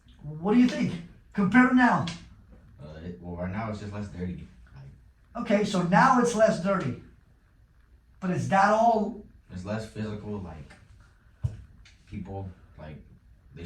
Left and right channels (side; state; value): both; identical; correlation 1.00